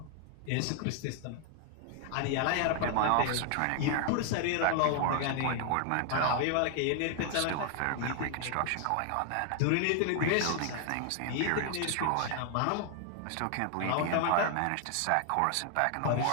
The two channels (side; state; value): both; different; correlation 0.00